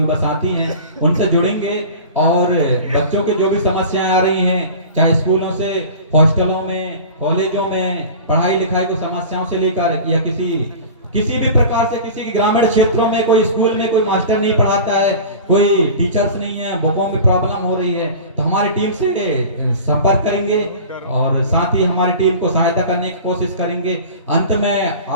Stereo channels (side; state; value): both; inverted; correlation -0.37